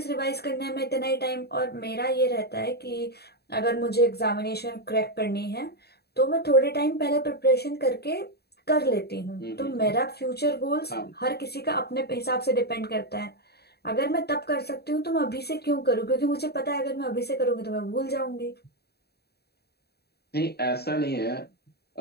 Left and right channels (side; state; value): right; late; 0.47 ms